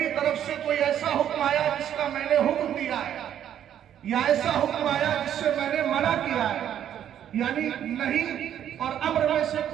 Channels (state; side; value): quieter; left; 10.2 dB